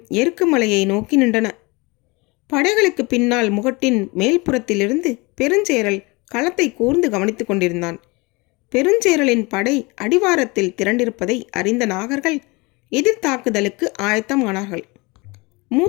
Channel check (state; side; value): quieter; right; 25.7 dB